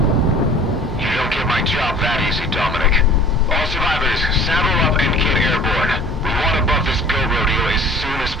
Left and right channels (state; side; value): normal; both; correlation 0.47